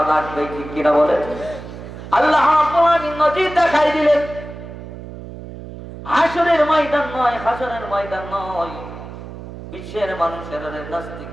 লাগবে, ঠিক কিনা বলে। আল্লাহ নজির দেখাই দিলেন, হাসরের ময়দান নয়, হাসরের ময়দান নয়, বিশ্বের মানুষের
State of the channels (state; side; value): noise; right; hum, 12 dB below the sound